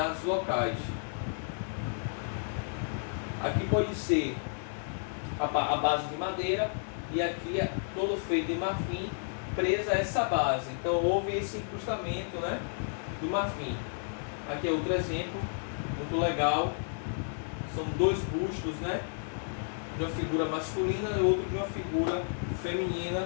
locais. Aqui pode ser a base de madeira, e aqui é todo feito em marfim, presa a essa base. Então houve esse incrustamento, né, do marfim. Aqui é outro exemplo muito legal. São 2 bustos, né, de uma figura masculina e outro de uma figura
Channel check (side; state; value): right; silent; 57 dB below the other